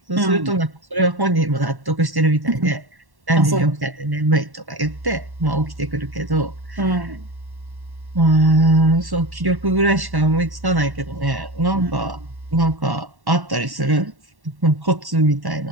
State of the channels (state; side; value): late; left; 1.1 ms